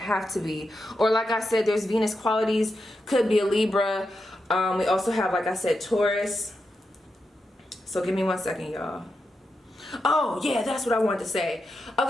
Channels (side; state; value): both; normal; correlation 0.87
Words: to be. Or like I said, there's Venus qualities, could be a Libra. We also have, like I said, Taurus. So give me 1 second, y'all. Oh yeah, that's what I wanted to say.